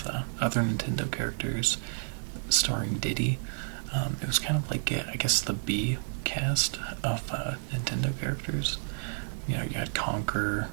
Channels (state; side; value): silent; left; digital silence